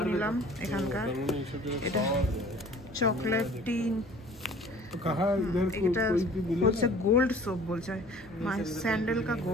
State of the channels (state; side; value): normal; both; correlation 0.49